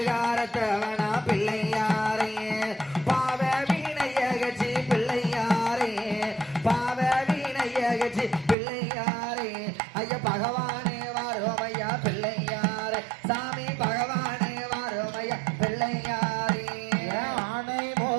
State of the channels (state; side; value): drops out; left; at 8.6 s